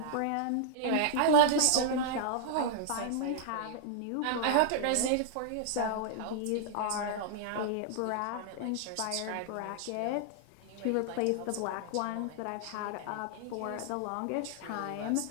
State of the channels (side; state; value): both; different; correlation -0.01